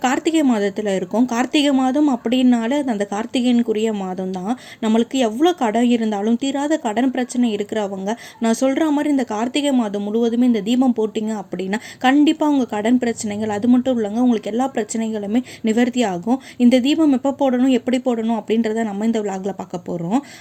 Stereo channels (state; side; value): identical; both; correlation 1.00